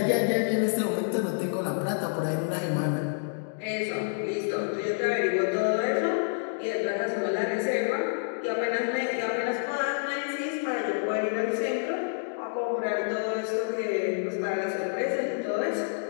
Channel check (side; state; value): right; silent; digital silence